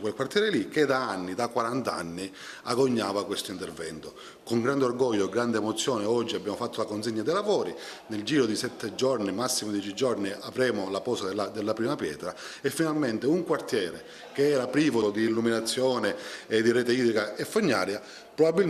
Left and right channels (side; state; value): both; identical; correlation 1.00